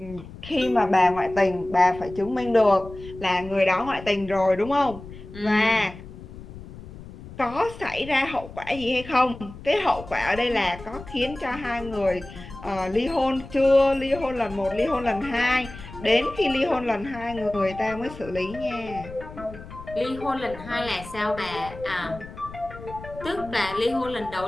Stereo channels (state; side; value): noise; left; rumble, 15 dB below the sound